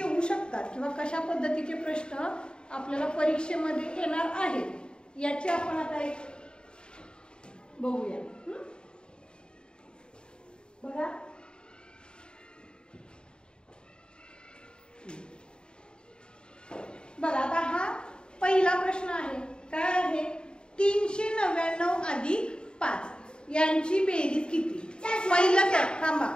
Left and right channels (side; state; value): right; late; 0.050 ms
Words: शकतात किंवा कशा पद्धतीचे प्रश्न आपल्याला परीक्षेमध्ये येणार आहेत याचे आपण आता एक बघूया. बघा, बघा आता हा पहिला प्रश्न आहे. काय आहे? 399 अधिक 5 यांची बेरीज किती? पहिलं काय? थांबा,